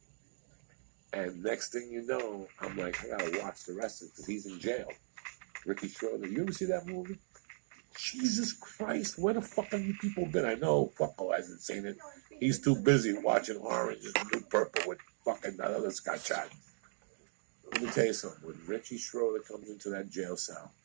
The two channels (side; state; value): left; silent; digital silence